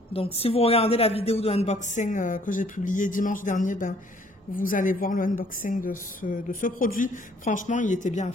Donc, si vous regardez la vidéo de unboxing que j'ai publiée dimanche dernier, ben, vous allez voir le unboxing de ce produit. Franchement, il était bien à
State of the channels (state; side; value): normal; both; correlation 0.60